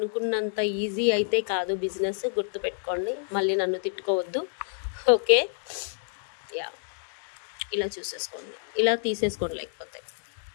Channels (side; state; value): right; silent; digital silence